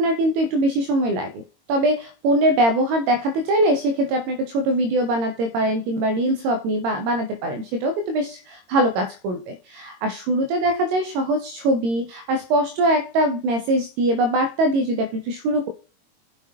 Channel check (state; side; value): late; left; 22 ms